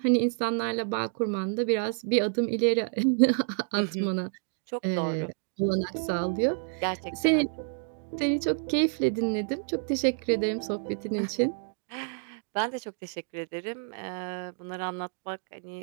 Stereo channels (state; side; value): silent; left; 59 dB below the other